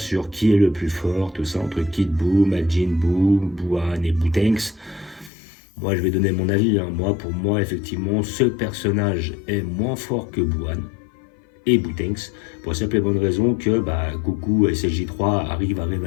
sur qui est le plus fort, tout ça, entre Kid Buu, Majin Buu, Buan et Boutenks. Moi je vais donner mon avis, hein. Pour moi effectivement ce personnage est moins fort que Buan et Boutenks, pour la simple et bonne raison que Goku et SLJ3 arrivent à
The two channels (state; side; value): drops out; right; at 5.3 s